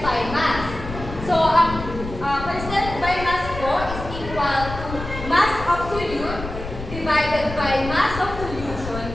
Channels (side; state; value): left; noise; rumble, 9 dB below the sound